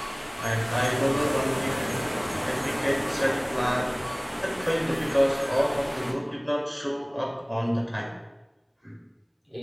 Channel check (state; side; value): identical; both; correlation 1.00